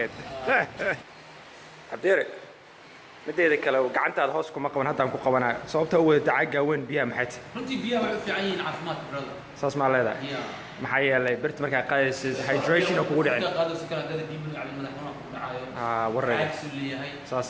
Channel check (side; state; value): both; identical; correlation 1.00